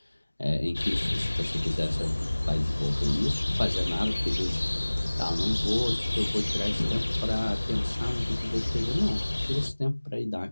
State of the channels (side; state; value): both; inverted; correlation -1.00